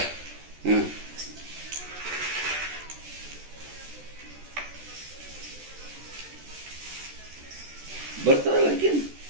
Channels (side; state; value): left; late; 14 ms